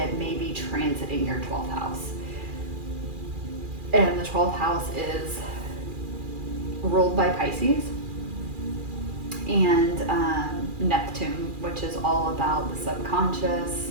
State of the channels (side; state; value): left; late; 2.4 ms